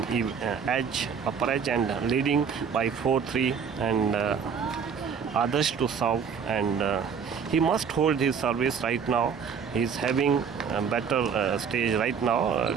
edge, upper edge, and leading by 4-3, and Adarsh to serve, and he must hold his service right now. He's having a better stage right now.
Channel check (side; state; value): left; quieter; 6.6 dB